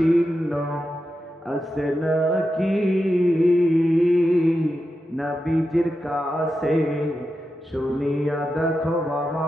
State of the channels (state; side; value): normal; both; correlation 0.89